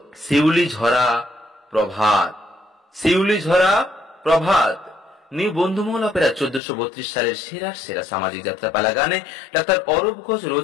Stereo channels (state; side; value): drops out; right; at 6.6 s